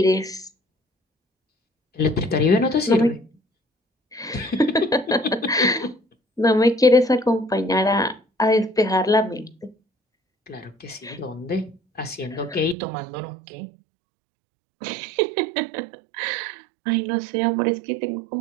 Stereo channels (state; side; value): drops out; left; at 12.8 s